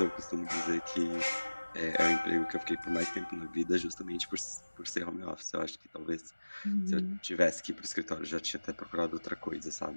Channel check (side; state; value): both; inverted; correlation -1.00